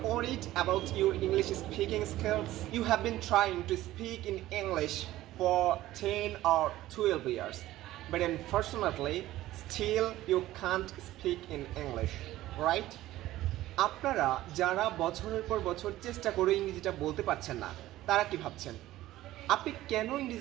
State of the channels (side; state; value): left; quieter; 15.4 dB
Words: worried about your English speaking skills? You have been trying to speak in English for 10 or 12 years, but unfortunately, still you can't speak in English, right? আপনারা যারা বছরের পর বছর চেষ্টা করে ইংরেজিটা বলতে পারছেন না, তারা কি ভাবছেন? আপনি কেন